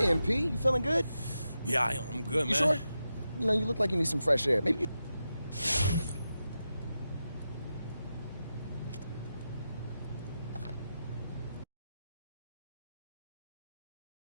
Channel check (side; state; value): both; inverted; correlation -0.89